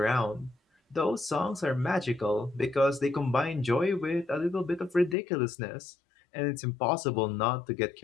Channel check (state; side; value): drops out; right; at 5.2 s